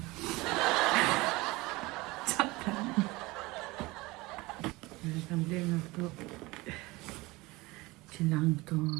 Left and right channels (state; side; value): quieter; left; 22.1 dB